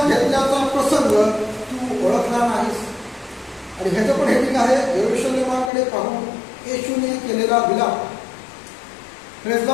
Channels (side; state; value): right; drops out; at 5.7 s